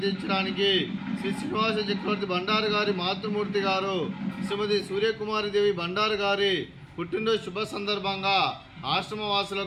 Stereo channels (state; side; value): identical; both; correlation 1.00